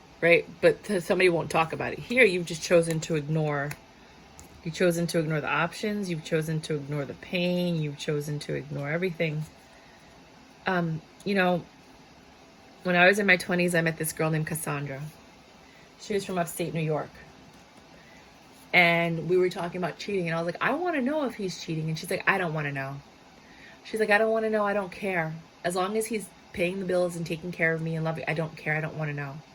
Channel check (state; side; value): identical; both; correlation 1.00